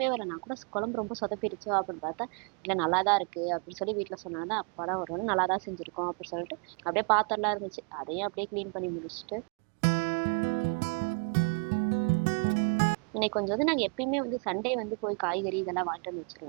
வரல. நான் கூட குழம்பு ரொம்ப சொதப்பிடுச்சோ அப்படின்னு பார்த்தா இல்லை நல்லா தான் இருக்கு அப்படின்னு சொல்லி வீட்டில் சொன்னாங்க. அப்பாடா ஒரு வேளை நல்லா தான் செஞ்சிருக்கோம் அப்படின்னு சொல்லிட்டு அப்படியே பாத்திரம்லாம் இருந்துச்சு. அதையும் அப்படியே க்ளீன் பண்ணி முடிச்சுட்டு இன்னைக்கு கொஞ்சம் வந்து நாங்கள் எப்பயுமே வந்து சண்டே வந்து போய் காய்கறி இதெல்லாம் வாங்கிட்டு வந்து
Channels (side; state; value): left; quieter; 36.8 dB